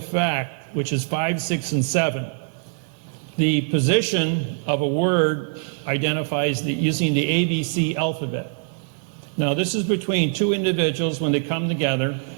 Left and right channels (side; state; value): left; silent; 61 dB below the other